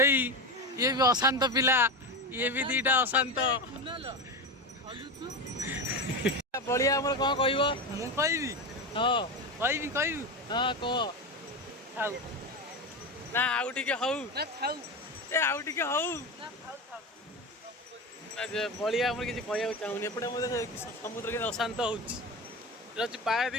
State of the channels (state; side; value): normal; both; correlation 0.20